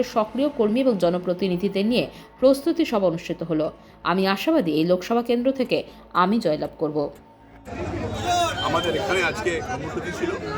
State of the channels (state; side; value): identical; both; correlation 1.00